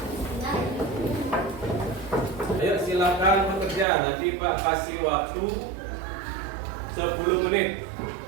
Ayo silakan bekerja. Nanti Pak kasih waktu 10 menit.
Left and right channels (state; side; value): drops out; left; at 3.9 s